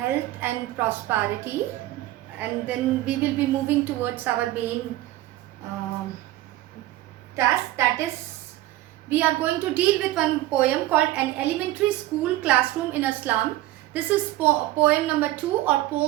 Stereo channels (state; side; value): quieter; left; 16.0 dB